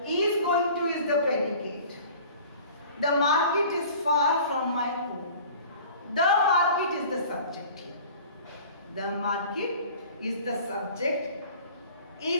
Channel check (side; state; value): both; inverted; correlation -0.45